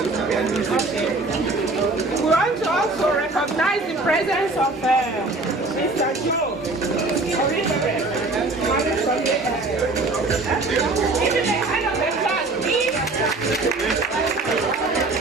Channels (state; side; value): quieter; left; 3.2 dB